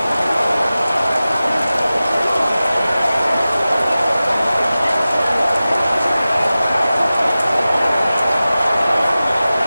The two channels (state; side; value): inverted; both; correlation -0.96